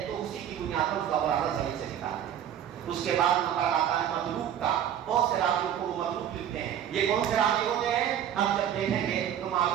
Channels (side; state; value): left; quieter; 9.9 dB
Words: تو اسی کی بنیاد پر اس کا خلاصہ صحیح سے نکالتے ہیں۔ اس کے بعد نمبر آتا ہے مطلوب کا، بہت سے راویوں کو مطلوب لکھتے ہیں۔ یہ کون سے راوی ہوتے ہیں؟ ہم جب دیکھیں گے تو